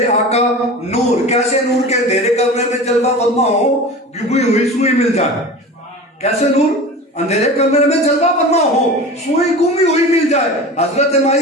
आका नूर। कैसे नूर के? अंधेरे कमरे में जलवा फरमा हो, गुमी हुई सुई मिल जाए। कैसे नूर? अंधेरे कमरे में जलवा फरमा हो, सुई गुमी हुई मिल जाए। हजरत माई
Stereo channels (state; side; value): normal; both; correlation 0.33